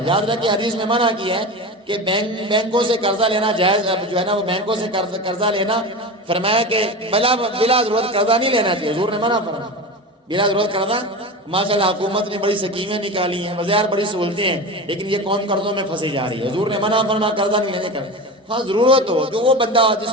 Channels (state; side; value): normal; both; correlation 0.26